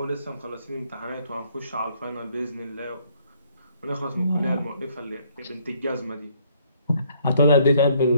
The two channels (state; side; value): inverted; both; correlation -0.65